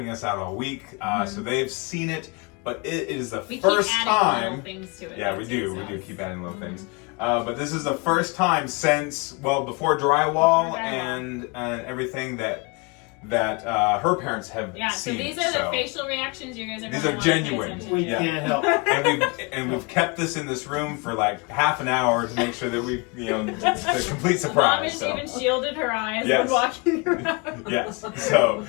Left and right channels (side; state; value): right; quieter; 30.0 dB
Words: us out all week, so they've seen it, but it is the first keep adding time. little things to it. Yeah, we do. We do keep adding little things. But this is the first time since, well, before drywall and everything that her parents have Yeah, so seen. these are the facial reactions you guys are These gonna are want to pay genuine. attention We to. can't help. And we've kept this in this room for like half an hour to make sure that we, it's a complete Mom surprise. has So. even shielded her eyes Yes. when walking around. Yes. So